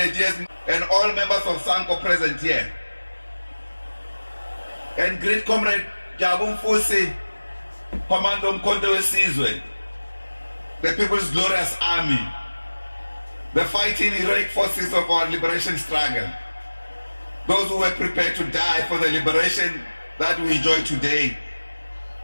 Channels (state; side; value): inverted; both; correlation -1.00